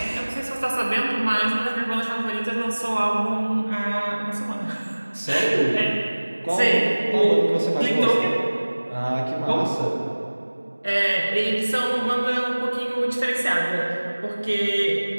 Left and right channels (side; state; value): both; inverted; correlation -1.00